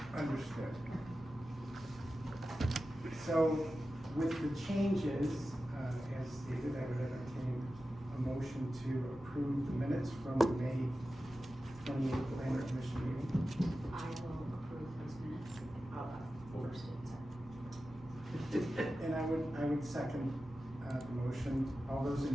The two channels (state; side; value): normal; both; correlation 0.93